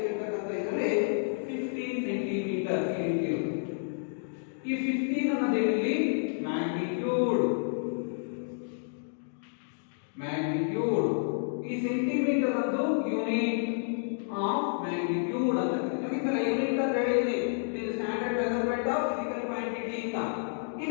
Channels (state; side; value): silent; right; digital silence